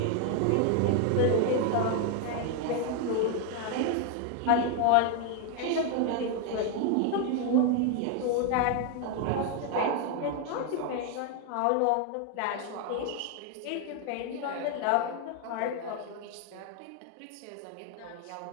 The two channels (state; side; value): different; both; correlation 0.01